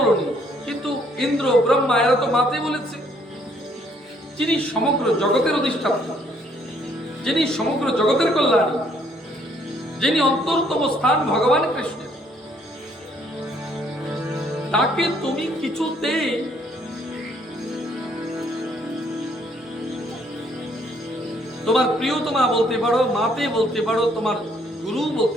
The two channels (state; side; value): normal; both; correlation 0.66